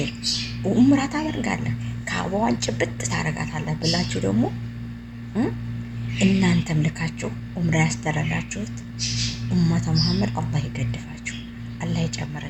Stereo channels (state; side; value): identical; both; correlation 1.00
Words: ኡምራ ታደርጋለህ፣ ከአበዋን ጭብጥ ታረጋታለህ ብላችሁ ደግሞ እናንተም ልካችሁ ኡምራ ያስደረጋችሁት ኡመተ መሐመድ አላህ ይገድፋችሁ፣ አላህ